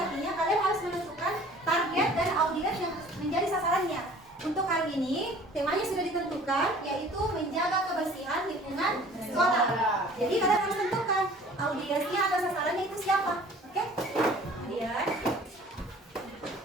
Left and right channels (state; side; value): normal; both; correlation 0.49